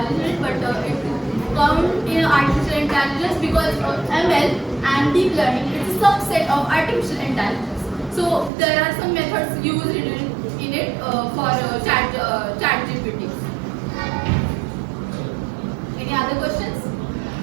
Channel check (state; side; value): drops out; left; at 8.5 s